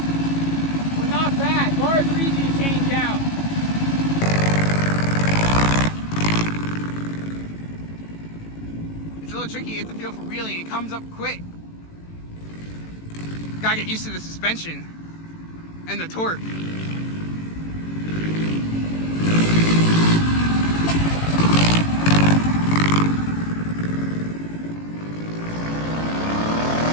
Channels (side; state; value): right; late; 18 ms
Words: Well, not bad. Bars are easy to change out. It's a little tricky. You have to feel for wheeling. It comes up quick. Gotta get used to the suspension and the torque.